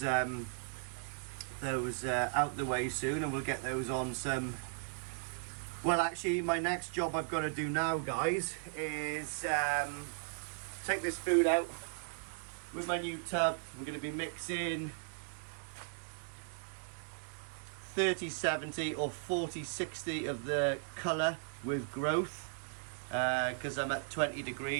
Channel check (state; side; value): silent; left; digital silence